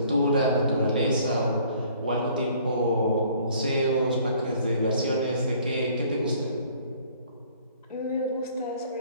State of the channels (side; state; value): both; inverted; correlation -0.57